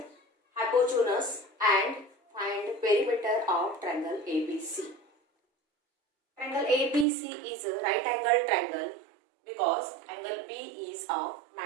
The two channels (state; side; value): drops out; left; at 7.1 s